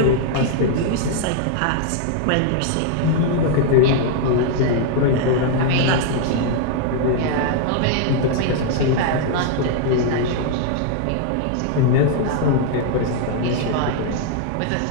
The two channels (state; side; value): different; both; correlation -0.01